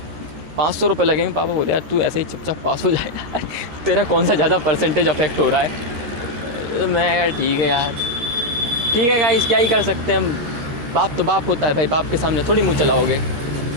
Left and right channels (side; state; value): left; late; 13 ms